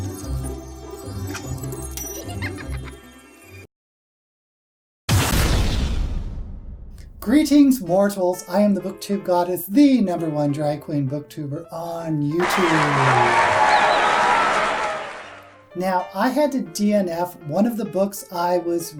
Greetings, mortals. I am the Booktube Goddess, the #1 drag queen booktuber on YouTube. Now, I had to DNF one of the books I was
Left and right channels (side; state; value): both; identical; correlation 1.00